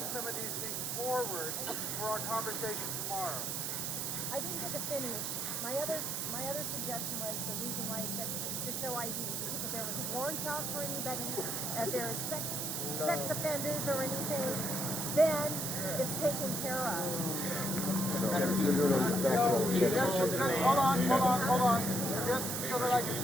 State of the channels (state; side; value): noise; right; hiss, 2 dB below the sound